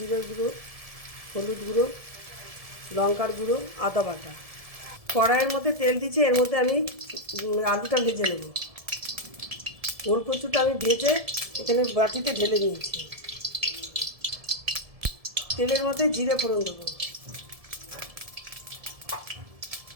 গুঁড়ো, হলুদ গুঁড়ো, লঙ্কার গুঁড়ো, আদা বাটা। কড়াইয়ের মধ্যে তেল দিচ্ছি, এর মধ্যে আমি আলুটা ভেজে নেব। ওল কচুটা আমি ভেজে এখানে বাটিতে ঢেলে নিয়েছি। তেলের মধ্যে জিরে ফোড়ন দেবো,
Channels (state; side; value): late; left; 1.7 ms